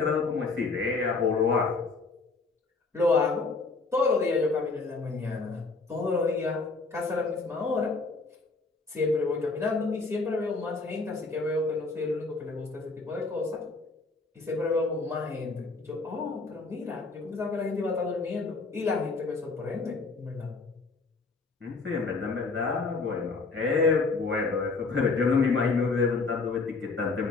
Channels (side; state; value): right; quieter; 3.9 dB